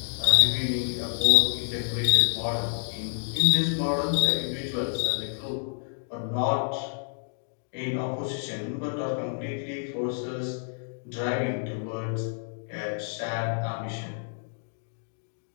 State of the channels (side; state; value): right; silent; digital silence